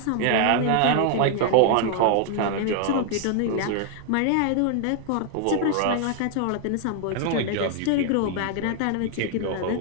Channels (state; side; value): different; both; correlation 0.00